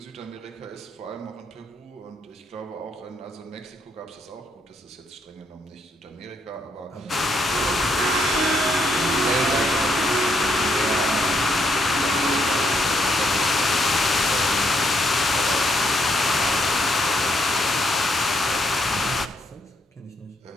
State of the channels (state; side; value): normal; both; correlation 0.75